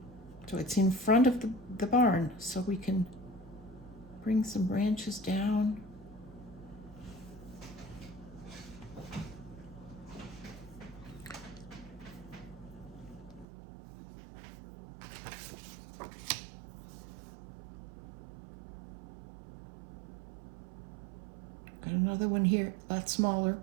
so it's in front of the barn, so we can bring some branches down. Got another one here, a lot smaller.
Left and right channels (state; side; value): drops out; left; at 13.5 s